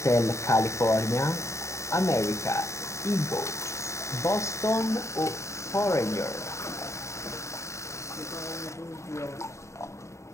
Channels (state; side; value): late; right; 0.14 ms